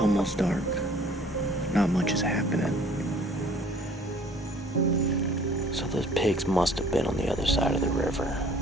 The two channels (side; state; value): both; normal; correlation 0.54